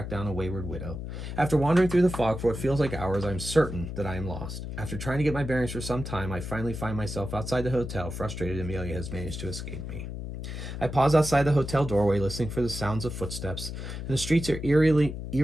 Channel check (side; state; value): left; noise; hum, 7 dB below the sound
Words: down a wayward widow. After wandering through the fog for what feels like hours, I'm certain that I am lost. After trying to get my bearings for some time, I finally find myself outside the hotel, frustrated Amelia has managed to escape me. I pause outside the hotel doorway, listening for the sounds of footsteps, and the streets are